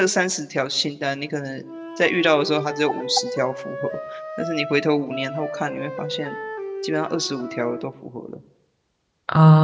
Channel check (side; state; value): both; identical; correlation 1.00